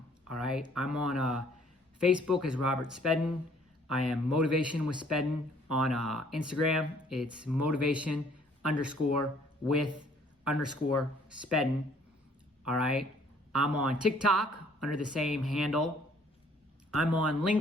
all right? I'm on Facebook as Robert Spedden. I am Motivation with Spedden. On Instagram, it's motivation_with_Spedden, all right? I'm on TikTok under the same handle. I'm on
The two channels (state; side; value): normal; both; correlation 0.60